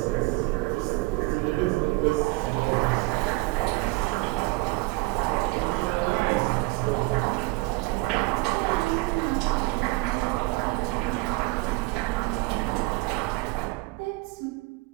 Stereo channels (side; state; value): left; quieter; 22.5 dB